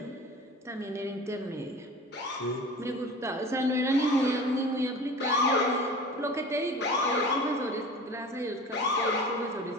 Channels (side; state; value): both; normal; correlation 0.38